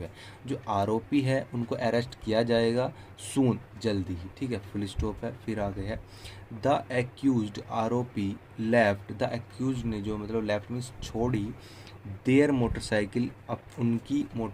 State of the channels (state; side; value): identical; both; correlation 1.00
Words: है। जो आरोपी है उनको अरेस्ट किया जाएगा सून, जल्दी ही, ठीक है, फुल स्टॉप है। फिर आगे है द एक्यूज्ड आरोपी लेफ्ट, द एक्यूज ने जो मतलब लेफ्ट मीन्स छोड़ी, देयर मोटरसाइकिल, अब उनकी